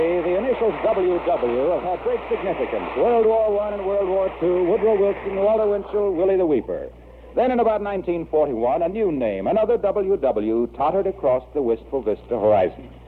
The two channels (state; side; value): identical; both; correlation 1.00